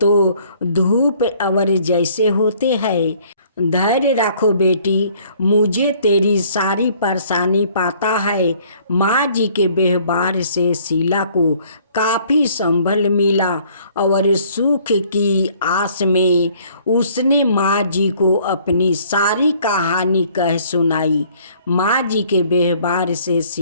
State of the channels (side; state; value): both; inverted; correlation -0.59